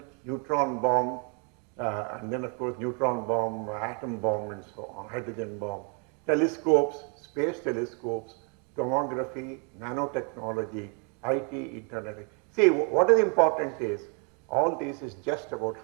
neutron bomb, and then of course neutron bomb, atom bomb and so on, hydrogen bomb, telescopes, space telescopes, tomography, nanotechnology, IT, internet. See, what is important is, all this is just about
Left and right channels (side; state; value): left; quieter; 37.3 dB